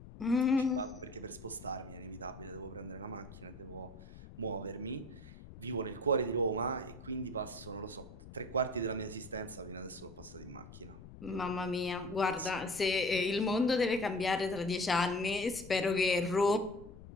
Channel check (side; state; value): left; noise; rumble, 16 dB below the sound